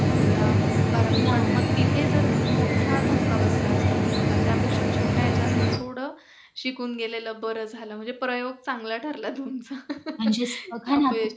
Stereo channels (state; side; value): identical; both; correlation 1.00